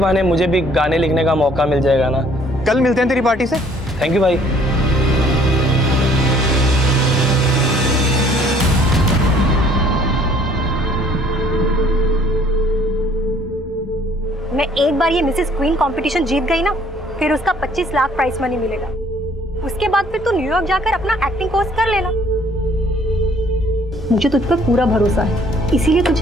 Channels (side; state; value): both; normal; correlation 0.59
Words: मुझे भी गाने लिखने का मौका मिल जाएगा ना। कल मिलते हैं तेरी पार्टी से। थैंक यू भाई। मैं एक बार ये मिसेस क्वीन कंपटीशन जीत गई ना, फिर उसका 25 लाख प्राइस मनी मिलेगा। उसके बाद फिर तू न्यूयॉर्क जाकर अपना एक्टिंग कोर्स कर लेना। मुझे तुझ पर पूरा भरोसा है, इसीलिए